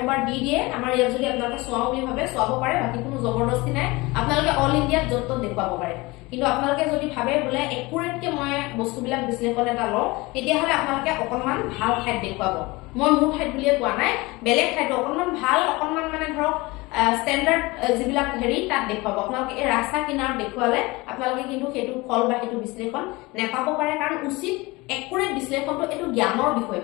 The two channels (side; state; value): right; quieter; 22.9 dB